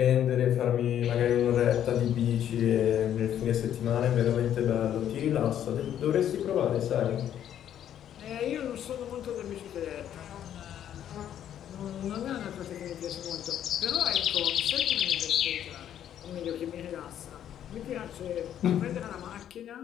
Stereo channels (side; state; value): right; quieter; 10.4 dB